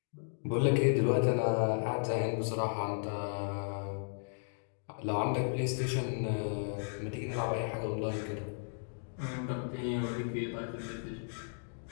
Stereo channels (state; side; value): silent; right; digital silence